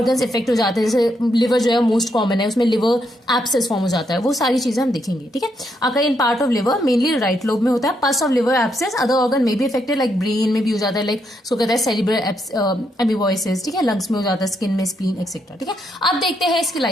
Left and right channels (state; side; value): normal; both; correlation 0.78